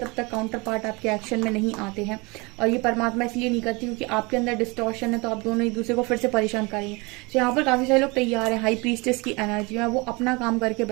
तक काउंटर पार्ट आपके एक्शन में नहीं आते हैं। और ये परमात्मा इसलिए नहीं करती क्योंकि आपके अंदर डिस्टॉर्शन है, तो आप दोनों एक दूसरे को फिर से परेशान करेंगे। तो यहाँ पर काफ़ी सारे लोग तैयार हैं, हाई प्रीस्टेस की एनर्जी में वो अपना काम करके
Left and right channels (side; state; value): left; quieter; 26.6 dB